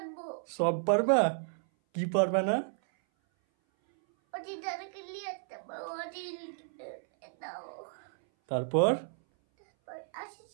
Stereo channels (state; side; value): silent; left; 56 dB below the other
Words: সব পারবা? কি পারবা না? ওটি দাদাকে নিয়ে আসতে পারবো। ওটি দাও। তারপর তারপর